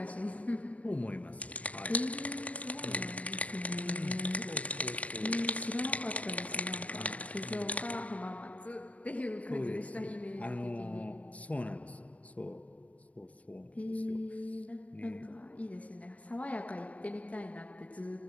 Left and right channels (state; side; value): late; right; 0.067 ms